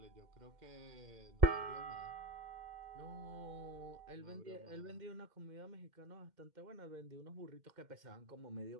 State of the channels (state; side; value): late; left; 2.1 ms